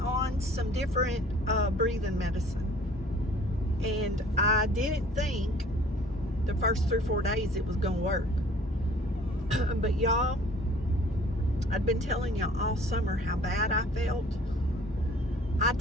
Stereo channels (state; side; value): normal; both; correlation 0.52